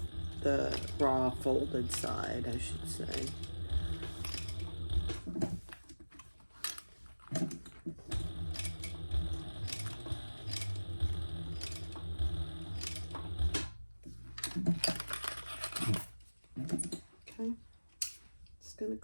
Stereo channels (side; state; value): both; inverted; correlation -1.00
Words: raw folded side, I should say. Okay, just gonna